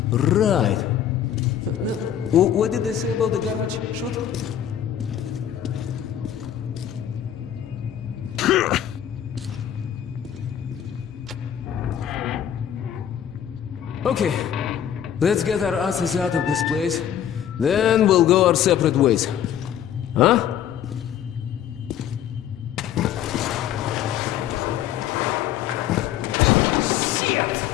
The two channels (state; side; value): quieter; right; 10.0 dB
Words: Right. Now, what did they say about the garbage chute? Okay, let's get our asses out of this place. Then we'll go our separate ways. Huh?